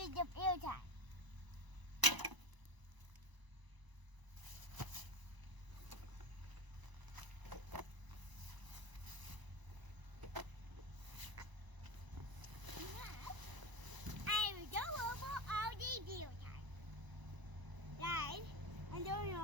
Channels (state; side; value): late; left; 1.0 ms